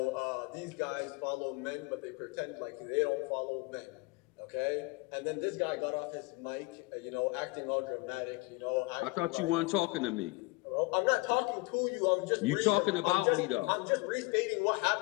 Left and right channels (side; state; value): right; quieter; 24.1 dB